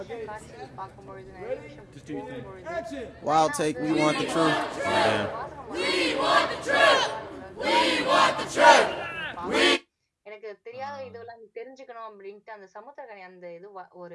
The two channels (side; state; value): both; identical; correlation 1.00